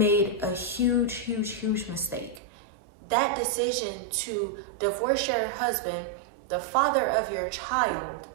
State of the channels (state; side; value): drops out; left; at 2.4 s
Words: a huge, huge, huge mistake. That decision to divorce your husband, the father of your child,